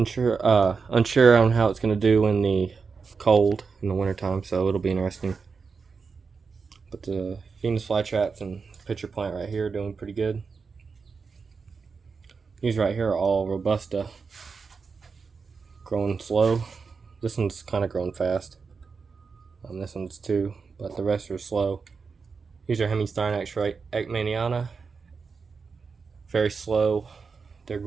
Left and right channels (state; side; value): quieter; left; 5.1 dB